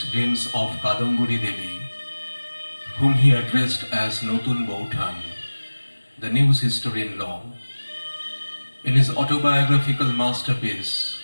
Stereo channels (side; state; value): both; inverted; correlation -1.00